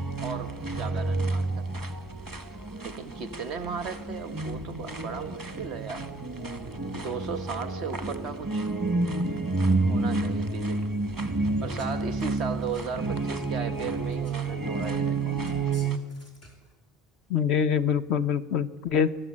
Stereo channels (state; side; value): normal; both; correlation 0.49